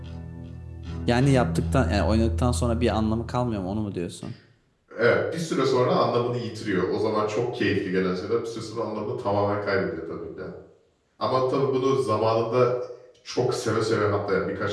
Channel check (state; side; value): identical; both; correlation 1.00